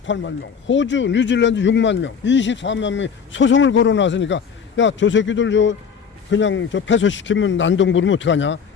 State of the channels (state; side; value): quieter; right; 6.7 dB